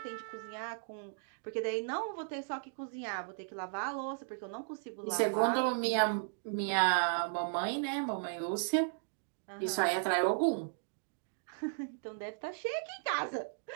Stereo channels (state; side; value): silent; left; digital silence